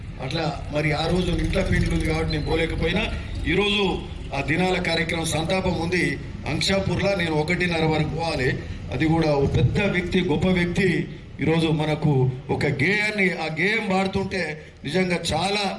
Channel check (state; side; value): identical; both; correlation 1.00